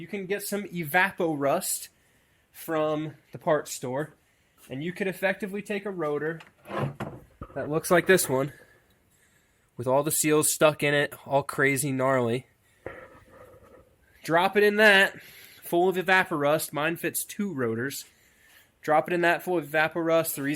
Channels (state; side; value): identical; both; correlation 1.00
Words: can get some evapo rust from the parts store, and you could effectively take a rotor that looks like this one with all the seals stuck in it, all crazy gnarly. Drop it in that, full of evaporust. Mine fits 2 rotors. Drop it in that full of Evaporust. The